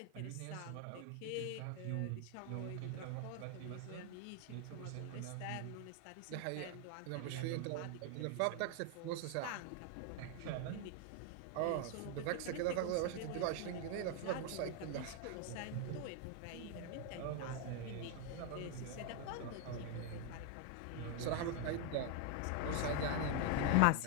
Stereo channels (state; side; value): different; both; correlation 0.00